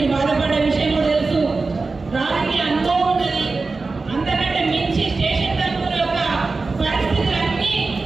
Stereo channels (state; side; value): quieter; left; 3.9 dB